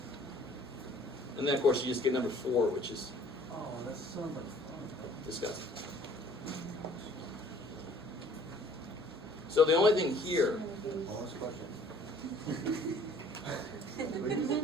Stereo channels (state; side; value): normal; both; correlation 0.55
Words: And then, of course, you just get number 4, which is Oh, that's so much fun. disgusting. So the only thing here, Bonus question.